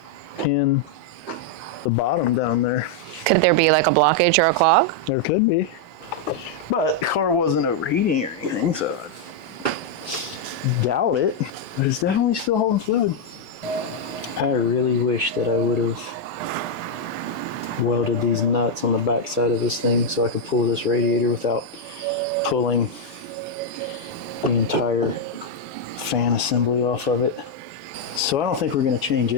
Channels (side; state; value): left; late; 4.6 ms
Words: in the bottom down there. Could there be like a blockage or a clog? There could be. But the car wasn't overheating or anything, so I doubt it. But it's definitely still holding fluid. I really wish that I would have welded these nuts on the back side of this thing so I could pull this radiator without pulling the entire fan assembly off of it. So I don't think we're going to change